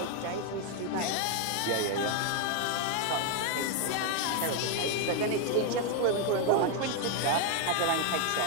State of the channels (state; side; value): different; both; correlation 0.01